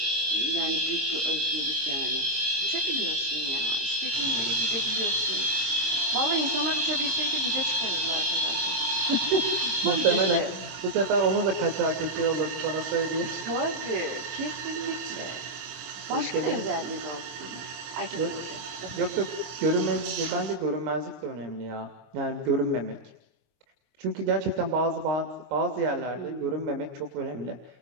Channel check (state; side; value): late; left; 24 ms